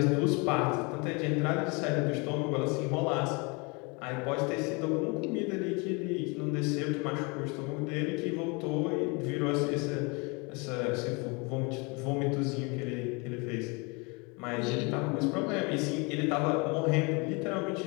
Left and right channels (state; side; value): quieter; right; 29.8 dB